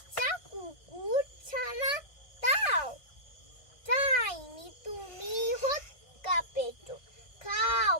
কুকুর ছানা তাও, চাইনি তুমি হৎকা পেটো, খাও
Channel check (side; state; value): right; late; 1.5 ms